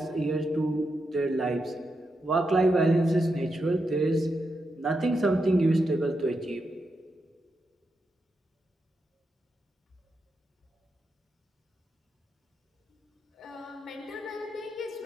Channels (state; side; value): normal; both; correlation 0.85